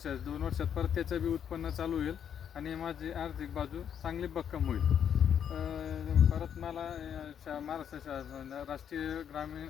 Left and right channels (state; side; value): quieter; right; 8.6 dB